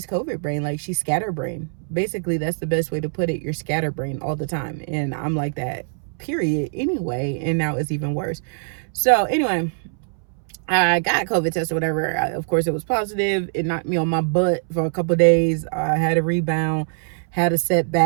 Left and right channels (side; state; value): left; silent; 64 dB below the other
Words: COVID brain. Like, she's scatterbrain. Basically, that's the best way to put it. You're scatterbrain all the time. And I'm like that, period, anyway. And now it's even worse. So, anyway, I got a COVID test or whatever. Of course, it was positive. It knocked me on my butt for a couple of days. I had a rebound, had a